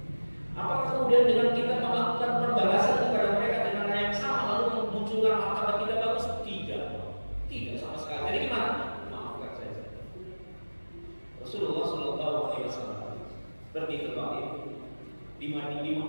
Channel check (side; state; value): both; inverted; correlation -1.00